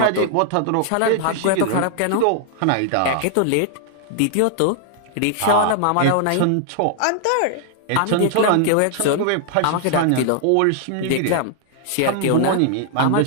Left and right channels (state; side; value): different; both; correlation 0.00